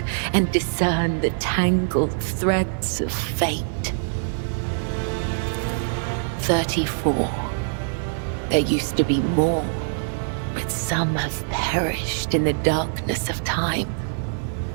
and discern the tangled threads of fate. 34. There used to be more, but some have perished in the darkness of time.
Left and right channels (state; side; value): silent; left; digital silence